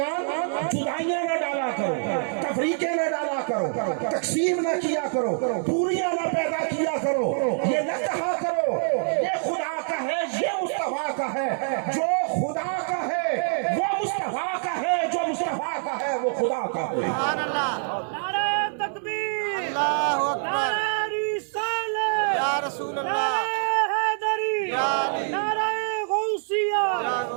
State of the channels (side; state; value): left; silent; digital silence